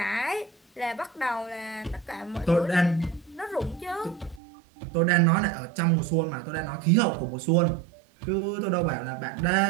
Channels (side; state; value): left; drops out; at 4.4 s